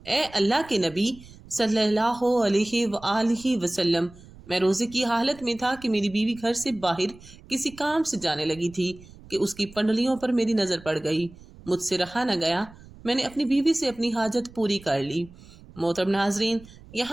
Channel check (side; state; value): right; noise; rumble, 21 dB below the sound